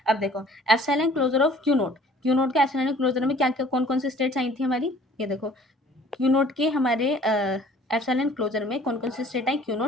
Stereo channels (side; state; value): both; normal; correlation 0.53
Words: अब देखो epsilon closure of Q naught का एप्सिलॉन क्लोजर में क्या क्या कौन कौन सी स्टेट्स आई थी हमारी, ये देखो Q नोट के हमारे एप्सिलॉन क्लोजर में कौन कौन सी स्टेट आई, Q